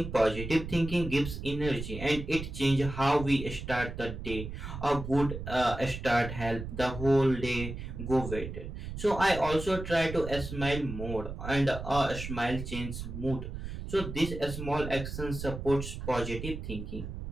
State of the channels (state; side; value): noise; right; rumble, 8 dB below the sound